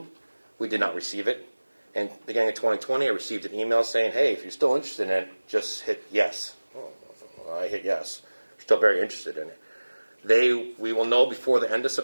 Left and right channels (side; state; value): both; inverted; correlation -1.00